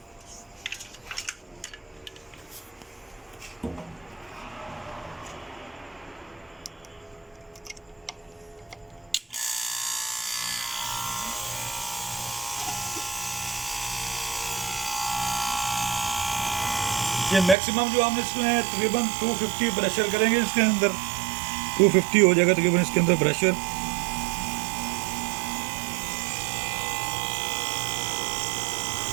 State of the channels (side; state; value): left; drops out; at 17.6 s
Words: ये मैक्सिमम जो हम इसमें तकरीबन 250 प्रेशर करेंगे इसके अंदर, 250 हो जाएगा तकरीबन इसके अंदर प्रेशर।